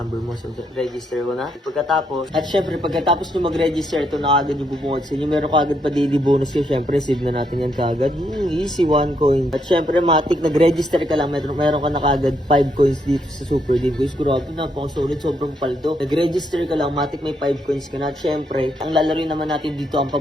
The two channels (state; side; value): normal; both; correlation 0.76